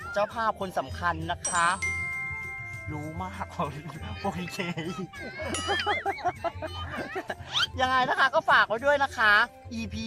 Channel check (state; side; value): identical; both; correlation 1.00